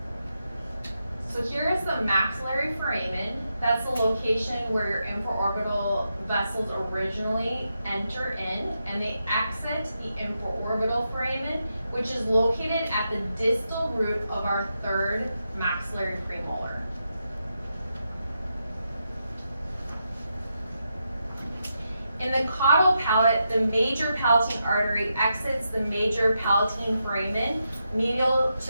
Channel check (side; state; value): both; inverted; correlation -0.85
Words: So here is the maxillary foramen. That's the location where your infraorbital vessels originally enter in, and they exit the infraorbital foramen, which is located at the distal root of our 3rd maxillary premolar. In the caudal palate, the major palatine artery exits the major palatine foramen medial